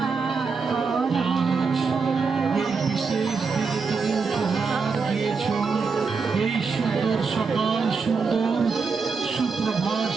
আজ এই বিশেষ দিনে তুমি উপহার দিয়েছ, এই সুন্দর সকাল, সুন্দর সুপ্রভাত,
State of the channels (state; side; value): quieter; left; 4.9 dB